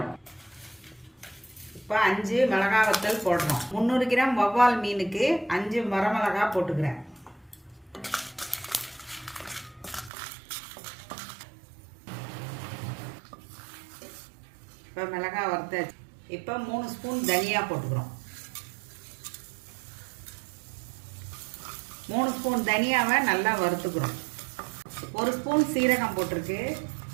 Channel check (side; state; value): left; drops out; at 10.1 s